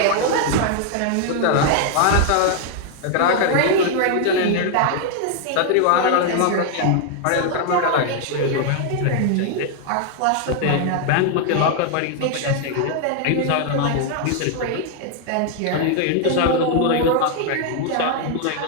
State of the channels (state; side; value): different; both; correlation 0.00